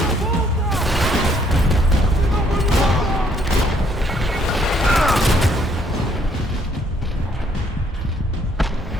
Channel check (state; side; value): normal; both; correlation 0.67